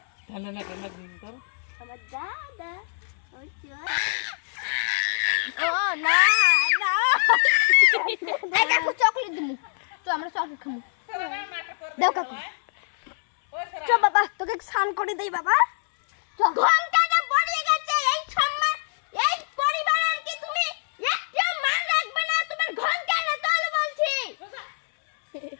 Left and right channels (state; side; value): silent; right; 62 dB below the other